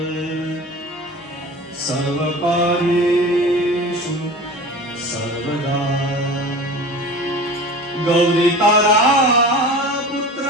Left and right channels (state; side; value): normal; both; correlation 0.36